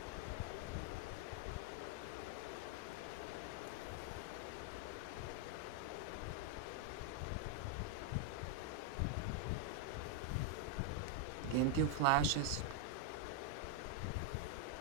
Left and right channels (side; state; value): both; different; correlation 0.00